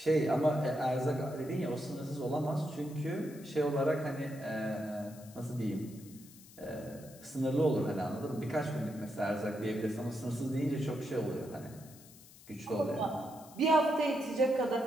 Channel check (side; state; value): left; noise; hiss, 21 dB below the sound